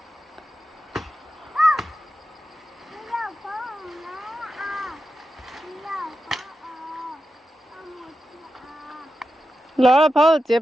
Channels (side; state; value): both; normal; correlation 0.90